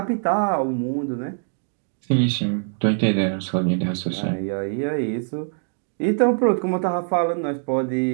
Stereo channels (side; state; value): left; silent; 63 dB below the other